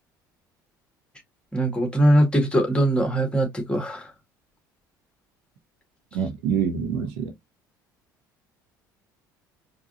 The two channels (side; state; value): both; normal; correlation 0.79